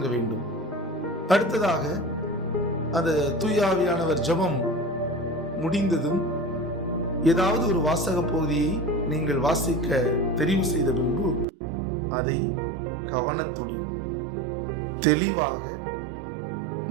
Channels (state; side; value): drops out; left; at 11.5 s